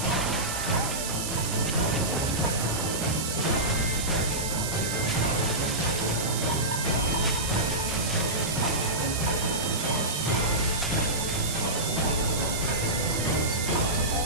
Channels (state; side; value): noise; right; hiss, 4 dB below the sound